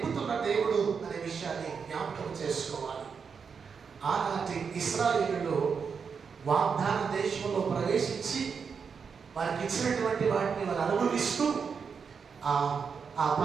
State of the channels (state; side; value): quieter; left; 6.0 dB